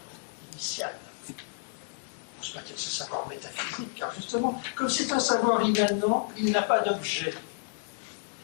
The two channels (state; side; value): silent; right; digital silence